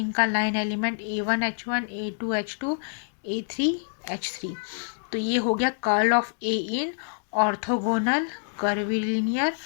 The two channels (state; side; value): silent; right; digital silence